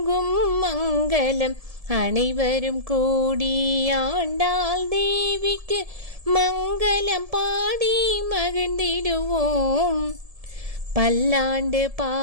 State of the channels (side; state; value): left; late; 1.7 ms